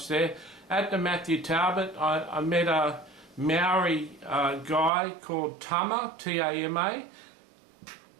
there. At the Matthew Talbot, I met a Maori guy called Tama, T-A-M-A,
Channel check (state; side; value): drops out; left; at 4.9 s